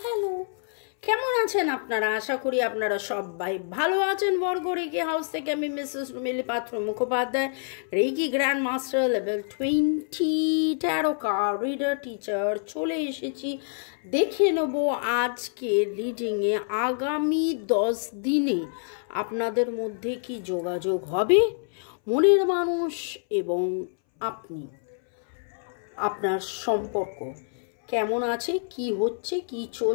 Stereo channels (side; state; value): right; silent; 60 dB below the other